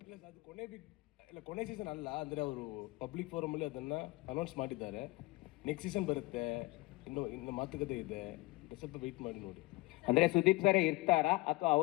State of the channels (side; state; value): right; quieter; 22.0 dB